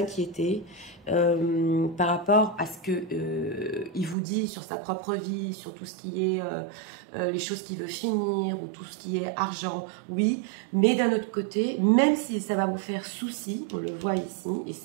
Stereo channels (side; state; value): left; drops out; at 4.2 s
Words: par rapport à ce qu'il vous dit sur sa propre vie, sur tout ce qui est les choses qu'il veut finir ou tout ce qui est argent, oui, mais d'un autre côté, même si ça va vous faire souci, on le voit ici, et